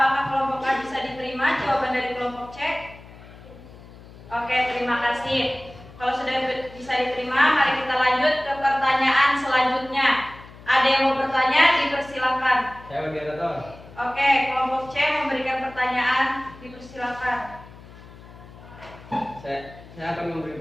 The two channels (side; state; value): left; noise; hum, 19 dB below the sound